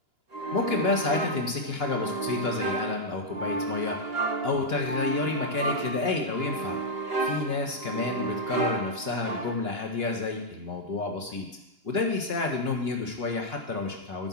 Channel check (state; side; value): late; left; 2.9 ms